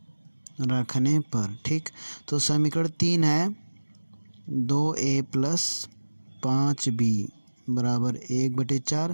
रखने पर, ठीक, तो समीकरण 3 है 2a प्लस 5b बराबर 1/4।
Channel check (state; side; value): inverted; both; correlation -1.00